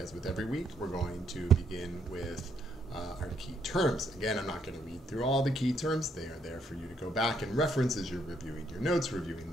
with every week, we're going to begin with our key terms. Again, I'm not going to read through all the key terms. They are there for you to go back and reference as you're reviewing your notes, reviewing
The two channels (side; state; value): both; normal; correlation 0.72